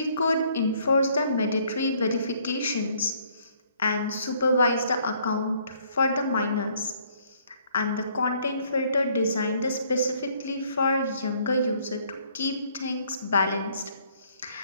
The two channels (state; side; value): inverted; both; correlation -0.64